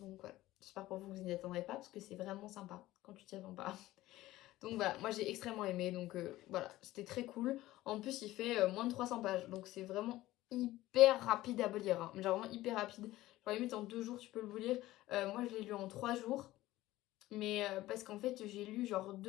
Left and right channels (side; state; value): right; quieter; 16.5 dB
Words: voilà. J'espère pour vous que vous n'y attendrez pas, parce que c'est vraiment sympa quand tu t'y attends pas. Donc voilà, moi j'ai extrêmement aimé, donc voilà, c'était très cool. En plus, il fait moins de 300 pages, donc c'est vraiment hyper rapide à lire. Hein. Genre vraiment hyper rapide. Genre limite en 2 jours, tu peux le lire. Moi, je l'ai lu en 3 jours. Mais parce qu'en fait, j'ai lu genre